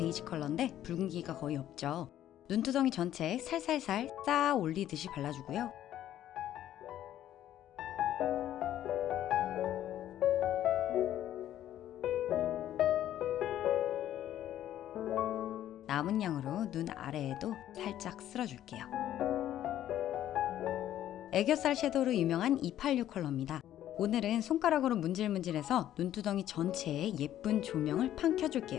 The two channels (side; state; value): right; quieter; 12.0 dB